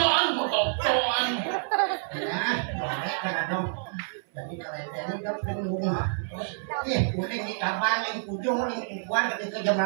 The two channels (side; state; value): left; silent; 59 dB below the other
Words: mau TikTokan. Ya, boleh kan dong. Jadi kalau ini kan bingung. Kuning di kabang, yang ujung, yang kuat, ketika jam